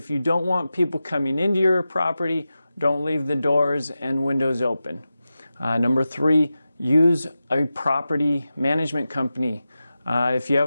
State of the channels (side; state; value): both; inverted; correlation -0.93